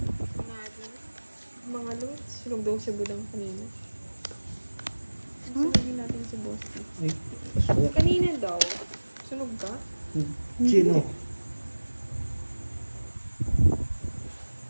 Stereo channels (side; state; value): both; inverted; correlation -1.00